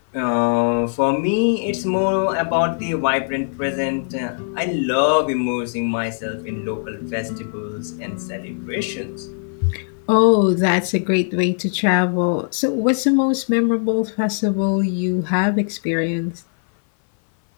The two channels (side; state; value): right; silent; 58 dB below the other